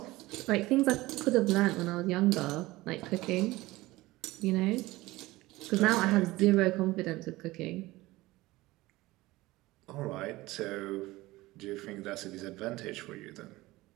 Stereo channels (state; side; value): quieter; left; 19.2 dB